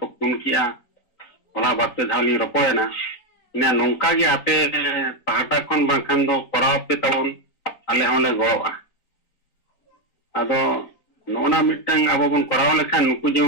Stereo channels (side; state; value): right; late; 3.9 ms